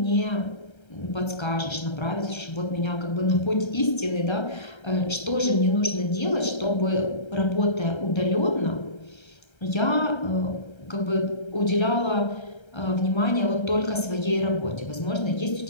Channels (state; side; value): late; right; 1.3 ms